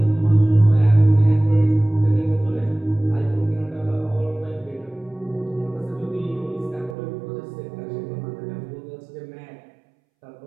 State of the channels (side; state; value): left; drops out; at 7.0 s